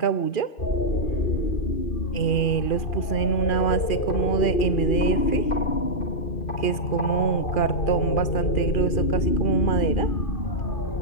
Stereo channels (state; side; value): late; right; 2.4 ms